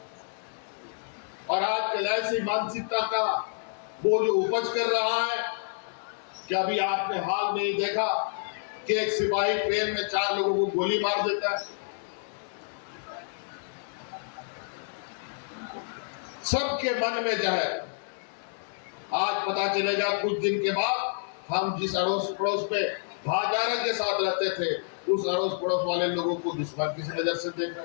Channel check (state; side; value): silent; right; digital silence